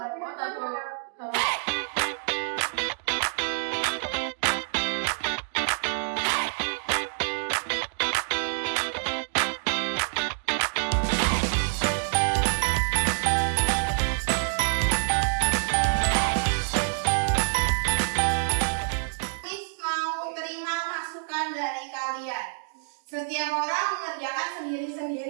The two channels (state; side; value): silent; left; digital silence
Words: Setiap orang mengerjakan